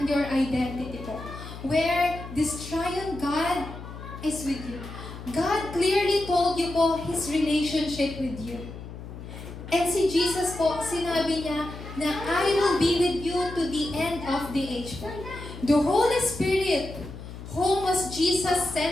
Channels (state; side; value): noise; left; hum, 12 dB below the sound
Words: your identity po. Where this triune God is with you. God clearly told you po His relationship with you. And si Jesus po, sinabi niya na I will be with you to the end of the age po. The Holy Spirit, whom was Jesus